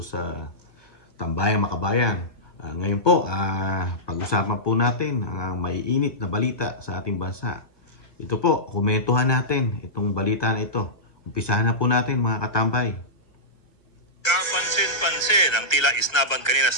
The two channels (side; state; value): right; late; 1.3 ms